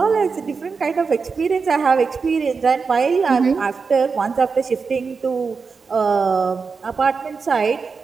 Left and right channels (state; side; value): quieter; left; 5.0 dB